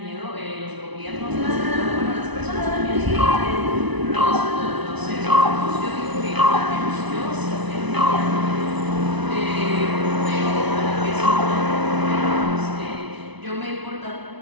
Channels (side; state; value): left; late; 1.0 ms